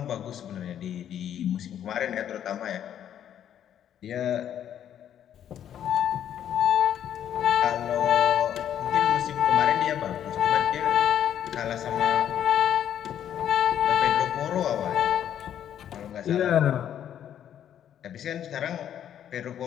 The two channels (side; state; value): right; quieter; 10.0 dB